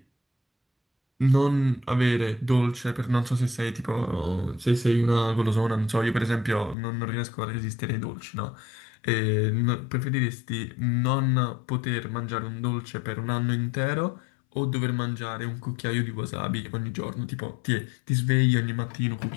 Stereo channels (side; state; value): right; drops out; at 6.8 s